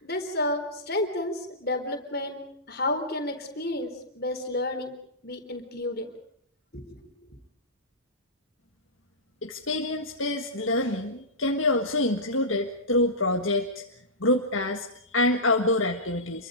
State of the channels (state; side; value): normal; both; correlation -0.16